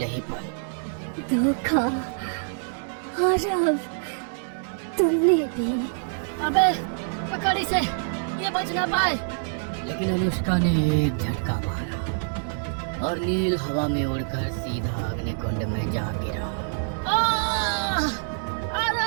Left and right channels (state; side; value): silent; left; digital silence